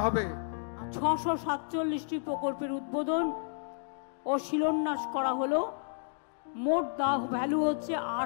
হবে। 647টি প্রকল্পের উদ্বোধন ও শিলান্যাস করা হলো। মোট ভ্যালু হচ্ছে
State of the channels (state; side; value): silent; right; digital silence